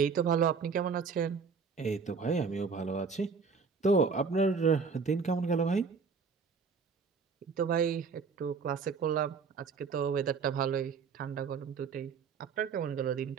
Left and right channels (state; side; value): quieter; left; 5.4 dB